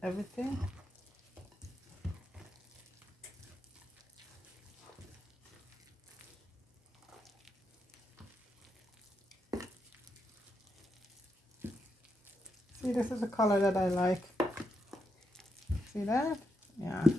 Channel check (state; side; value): normal; both; correlation 0.82